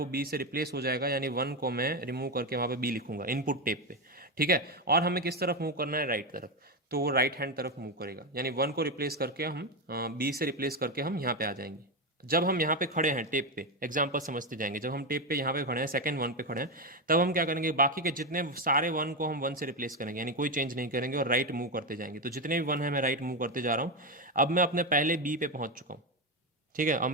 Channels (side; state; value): both; normal; correlation 0.11